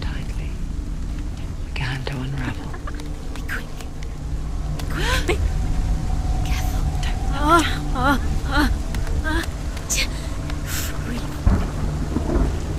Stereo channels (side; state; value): both; identical; correlation 1.00